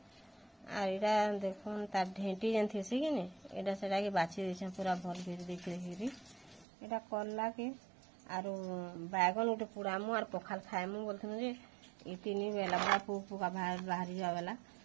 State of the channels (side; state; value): left; drops out; at 6.7 s